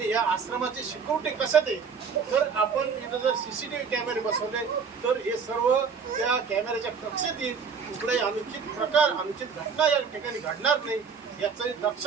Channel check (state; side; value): quieter; left; 5.9 dB